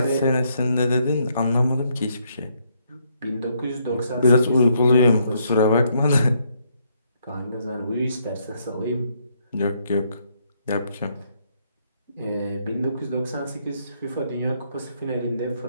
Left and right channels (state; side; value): inverted; both; correlation -0.73